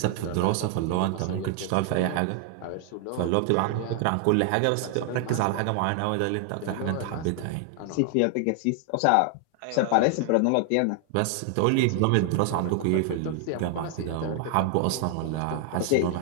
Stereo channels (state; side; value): different; both; correlation 0.00